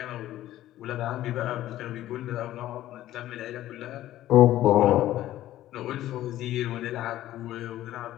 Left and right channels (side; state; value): right; quieter; 13.9 dB